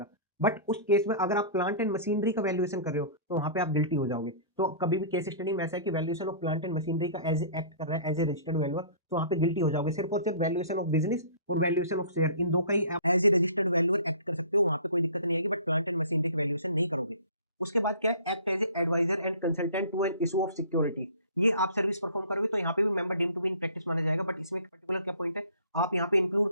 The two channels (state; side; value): inverted; both; correlation -0.45